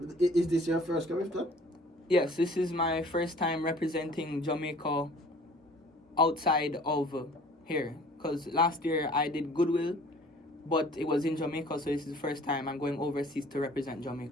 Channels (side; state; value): both; normal; correlation 0.50